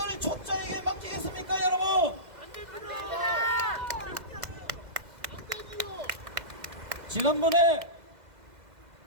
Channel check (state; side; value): late; left; 2.0 ms